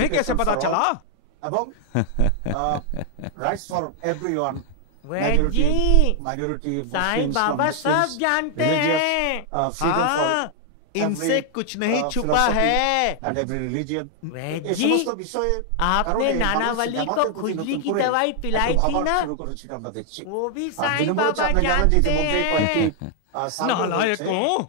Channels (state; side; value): different; both; correlation 0.00